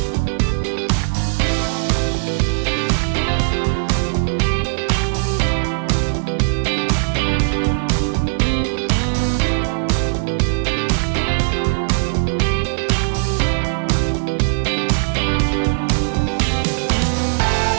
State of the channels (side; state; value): left; silent; digital silence